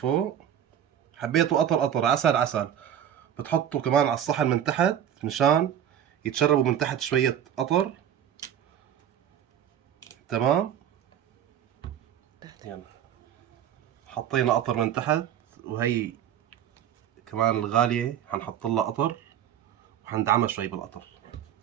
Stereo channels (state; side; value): quieter; left; 9.9 dB